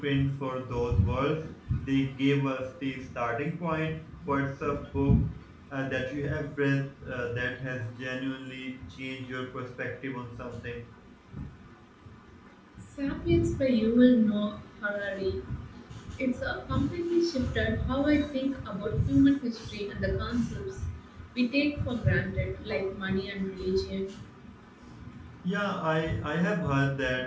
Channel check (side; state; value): both; identical; correlation 1.00